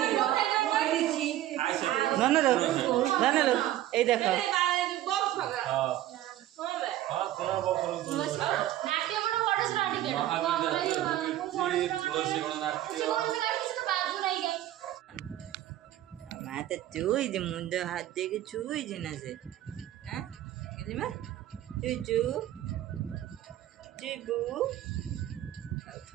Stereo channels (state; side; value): quieter; left; 13.7 dB